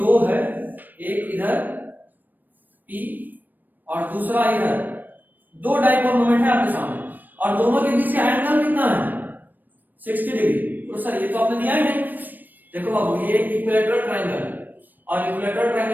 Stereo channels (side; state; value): left; late; 0.089 ms